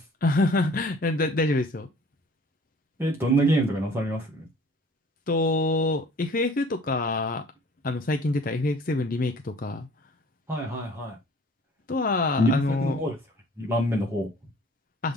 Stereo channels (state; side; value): normal; both; correlation 0.51